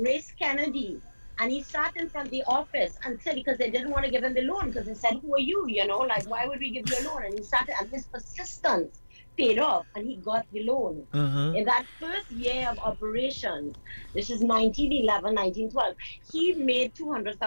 Grace Kennedy, and he sat in front of the office and said, because they didn't want to give him the loan, because they said, "Who are you? Like why would we give you a loan?" And he sat, and his persistence paid off, and he got the loan. Mm-hmm. In that first year of operations, this is 1911, 1912, he made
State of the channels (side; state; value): both; inverted; correlation -1.00